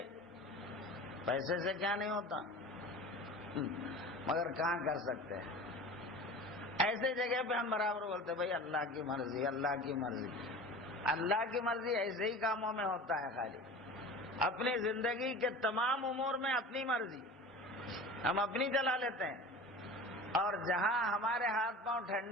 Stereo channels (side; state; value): both; normal; correlation 0.36